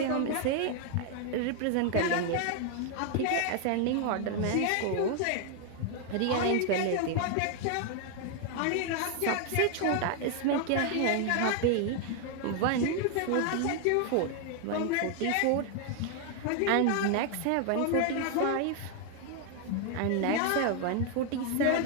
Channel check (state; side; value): different; both; correlation 0.00